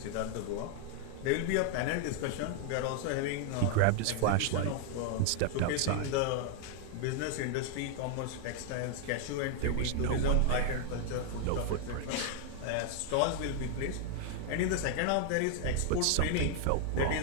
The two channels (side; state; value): both; different; correlation 0.00